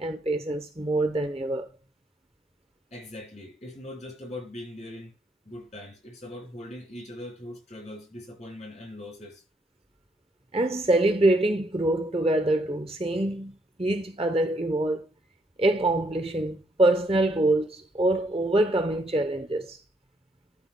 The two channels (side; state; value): both; normal; correlation 0.73